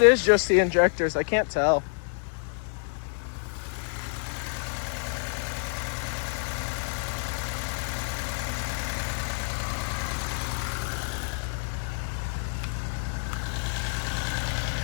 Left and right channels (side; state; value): right; silent; digital silence